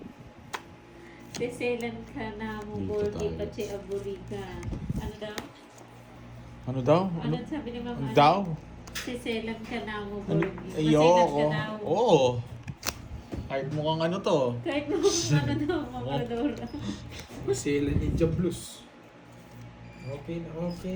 Seselan ka na mo, Dito Borgi, tayo. Pache, Aburika. Ano daw? Ano daw? Ano sabi ni Mama? Ano daw? Seselan ka na mo, Ano? Borgi. Maselan ka Ayoko. daw. Oo. Kahit mukhang ano to. Kahit mo ano daw, Mama Rodora. Masela Ninja Blues. Okay na,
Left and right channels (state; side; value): identical; both; correlation 1.00